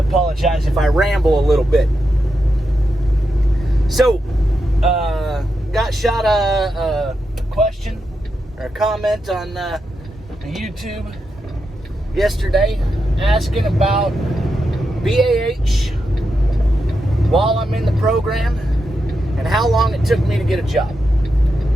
if I ramble a little bit. So, got shot a question or a comment on YouTube yesterday asking about BAH while I'm in the program and how long it took me to get a job.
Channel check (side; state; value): both; normal; correlation 0.86